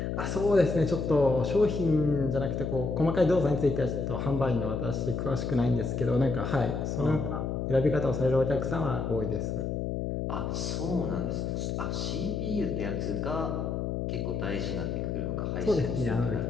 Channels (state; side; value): noise; left; hum, 2 dB below the sound